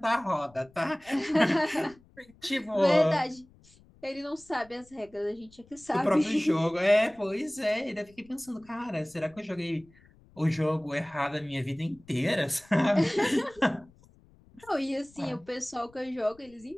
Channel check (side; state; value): left; noise; rumble, 28 dB below the sound